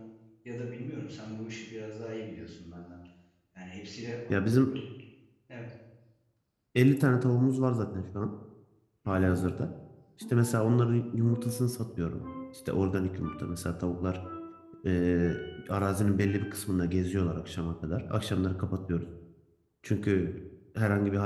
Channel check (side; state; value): both; identical; correlation 1.00